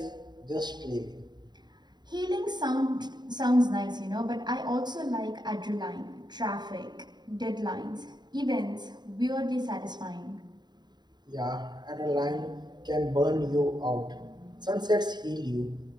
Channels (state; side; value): late; left; 0.21 ms